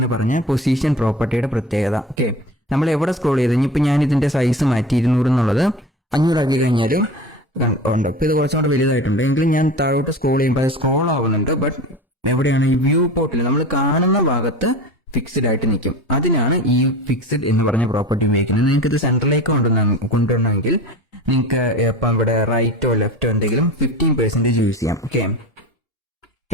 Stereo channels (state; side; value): normal; both; correlation 0.33